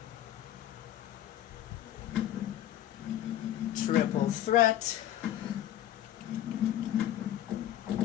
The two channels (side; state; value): right; quieter; 12.2 dB